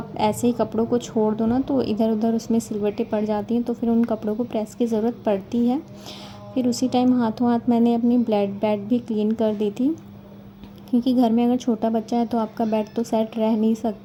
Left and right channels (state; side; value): identical; both; correlation 1.00